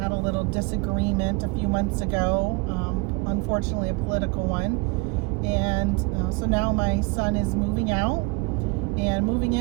a little disagreement a few months ago, unfortunately a political one. And so now my son is moving out and moving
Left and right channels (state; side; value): quieter; left; 27.6 dB